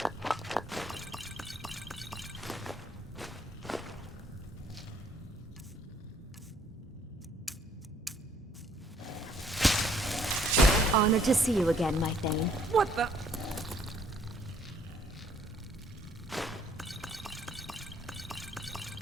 Honored to see you again, my Thane. What the?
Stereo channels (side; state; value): both; normal; correlation 0.63